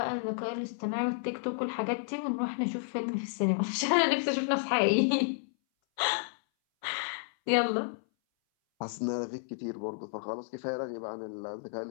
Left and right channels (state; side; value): silent; right; 57 dB below the other